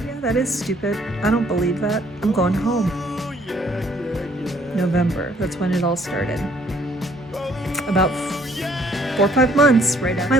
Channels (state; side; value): normal; both; correlation 0.63